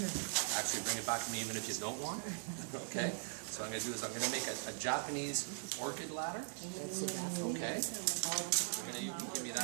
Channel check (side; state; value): left; silent; digital silence